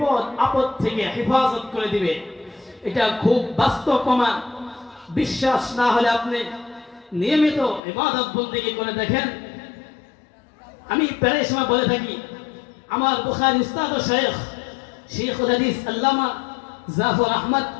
আপদ থেকে হেফাজত করে দিবে। এটা খুব বাস্তব প্রমাণ। বিশ্বাস না হলে আপনি নিয়মিত ইবাদত বন্দেগী করে দেখেন। আমি প্রায় সময় বলে থাকি, আমার বুখারী উস্তাদ ও শেখুল হাদিস আল্লামা জাফর আহমদ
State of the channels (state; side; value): drops out; right; at 7.8 s